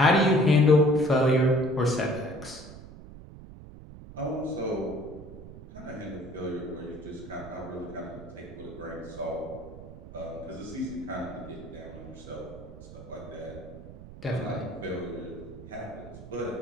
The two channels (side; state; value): right; noise; rumble, 15 dB below the sound